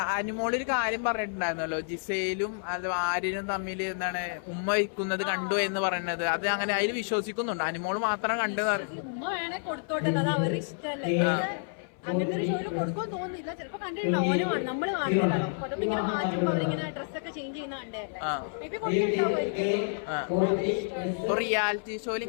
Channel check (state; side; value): silent; right; 58 dB below the other